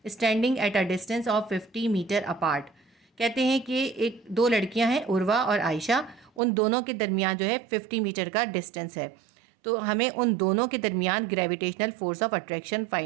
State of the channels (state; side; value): drops out; left; at 6.4 s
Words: standing at a distance of 50 metre apart. कहते हैं कि एक दो लड़कियां हैं, उर्वा और आयशा, उन दोनों के दरमियान जो है 50 मीटर का डिस्टेंस है। तो हमें उन दोनों के दरमियान gravitational force of attraction